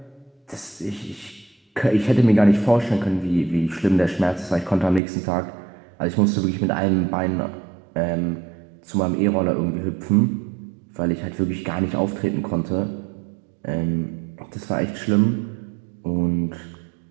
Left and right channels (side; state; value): left; drops out; at 5.0 s